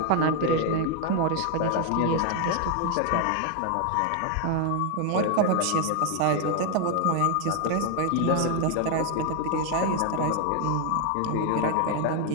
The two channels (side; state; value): both; different; correlation 0.01